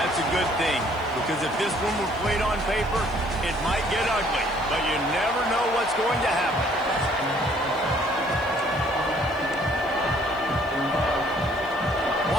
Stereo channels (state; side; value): noise; left; hiss, 27 dB below the sound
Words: a good thing. Because if this one were played on paper, it might get ugly. But you never know what's going to happen.